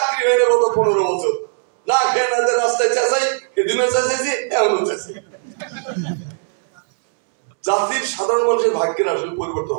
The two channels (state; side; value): silent; left; 67 dB below the other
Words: হয়ে গত 15 বছর, না খেয়ে না রাস্তায় চেঁচাই, এদিনও চেঁচাইছি, এমনও চেঁচাই। জাতির সাধারণ মানুষের ভাগ্যের আসলে পরিবর্তন